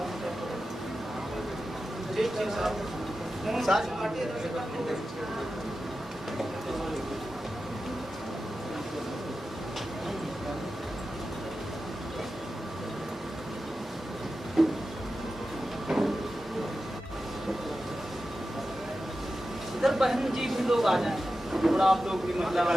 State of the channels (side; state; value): both; normal; correlation 0.92